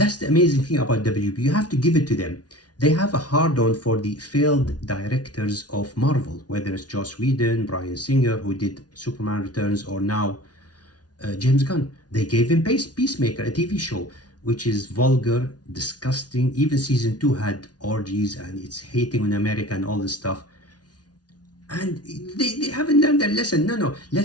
the amazing thing about WB. You have to give it to them. They have a hard-on for the failed directors of Marvel, whether it's Joss Whedon, Bryan Singer, who did Superman Returns, or now James Gunn. They gave him Peacemaker, a TV show, which is vulgar, disgusting. Even season 2 had orgies and it's hating on America and all this stuff. And they haven't learned their lesson. No,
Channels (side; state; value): right; late; 0.69 ms